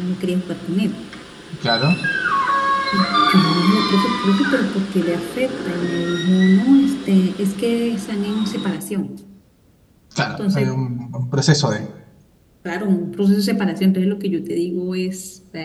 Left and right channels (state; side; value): identical; both; correlation 1.00